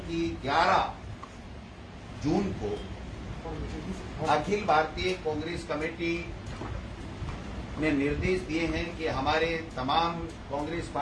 कि 11 जून को अखिल भारतीय कांग्रेस कमेटी ने निर्देश दिए हैं कि हमारे तमाम कांग्रेस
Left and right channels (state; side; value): identical; both; correlation 1.00